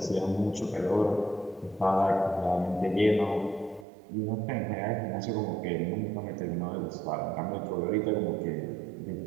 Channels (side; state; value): left; drops out; at 3.9 s